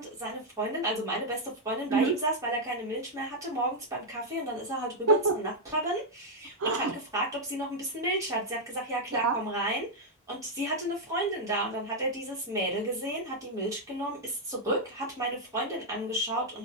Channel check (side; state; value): both; normal; correlation -0.02